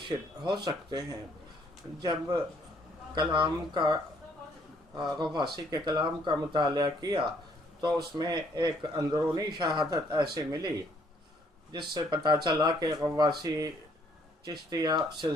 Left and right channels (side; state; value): both; normal; correlation 0.65